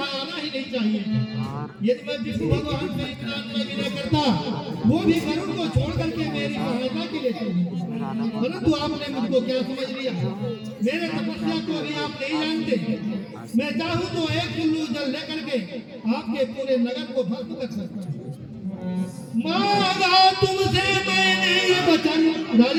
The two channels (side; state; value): both; identical; correlation 1.00